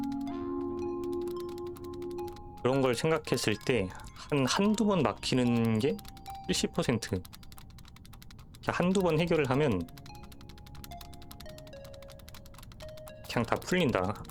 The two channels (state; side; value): identical; both; correlation 1.00